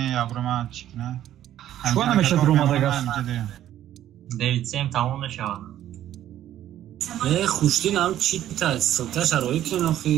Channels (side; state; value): left; quieter; 12.1 dB